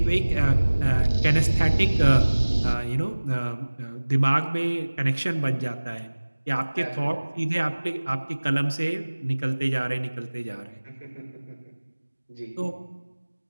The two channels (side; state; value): both; inverted; correlation -1.00